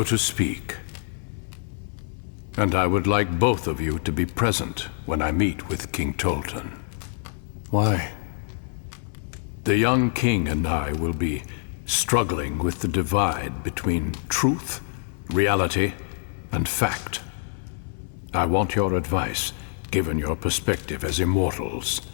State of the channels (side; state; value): right; silent; digital silence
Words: to speak. And I would like both of you to be present when I meet with King Tolton. Why? The young king and I will be struggling with the divide between truth reality, and fact. I want your advice, given your perspective as immortals.